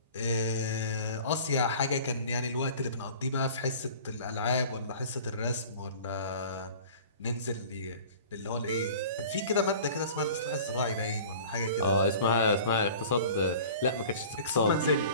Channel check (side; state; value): both; inverted; correlation -0.44